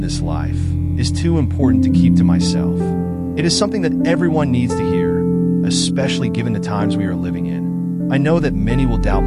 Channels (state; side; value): identical; both; correlation 1.00